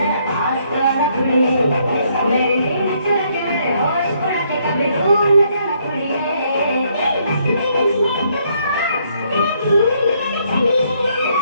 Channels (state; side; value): inverted; both; correlation -0.70